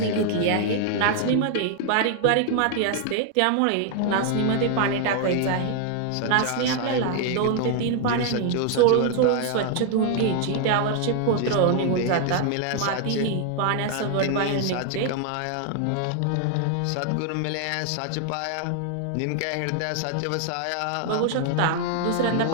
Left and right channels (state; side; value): different; both; correlation 0.00